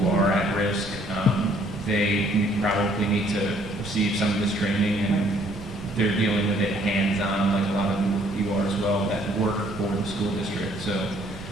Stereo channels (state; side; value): noise; right; rumble, 18 dB below the sound